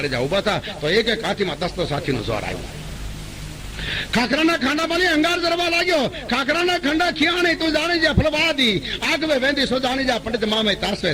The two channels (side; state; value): both; identical; correlation 1.00